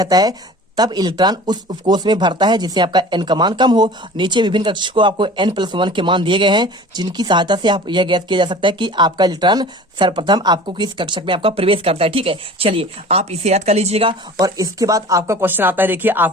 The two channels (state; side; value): normal; both; correlation 0.41